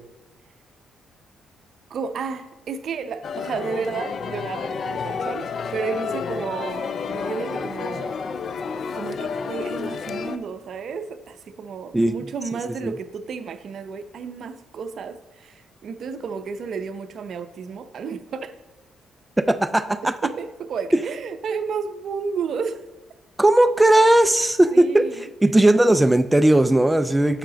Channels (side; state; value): both; normal; correlation 0.92